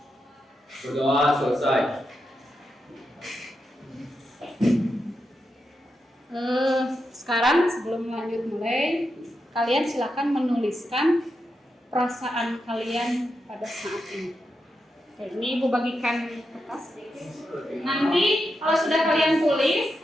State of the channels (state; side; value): normal; both; correlation 0.86